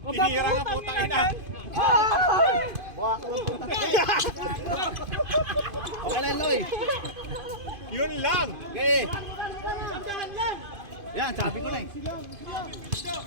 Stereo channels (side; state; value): left; late; 2.5 ms